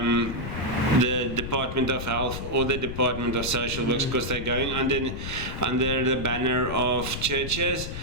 the Department of Health or the Department of Social Works, because they're going under the banner of churches,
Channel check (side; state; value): left; noise; rumble, 6 dB below the sound